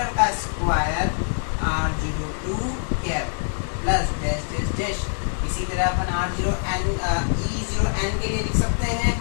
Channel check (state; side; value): silent; right; digital silence